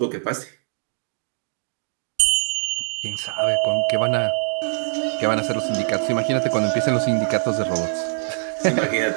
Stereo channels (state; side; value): silent; left; digital silence